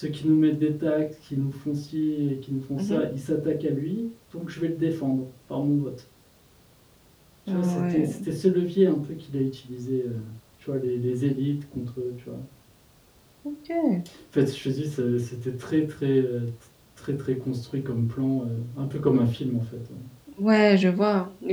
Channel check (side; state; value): both; identical; correlation 1.00